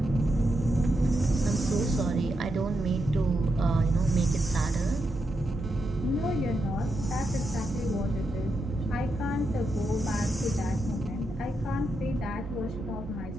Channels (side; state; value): both; normal; correlation 0.84